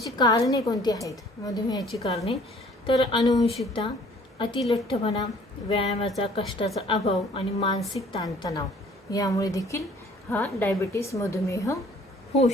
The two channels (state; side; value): normal; both; correlation 0.55